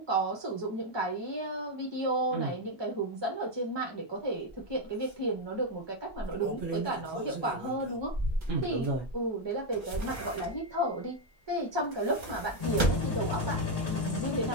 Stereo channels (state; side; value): normal; both; correlation 0.03